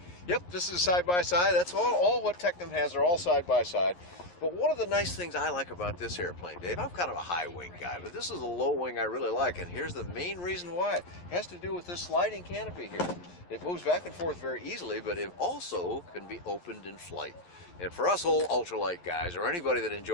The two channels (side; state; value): right; late; 11 ms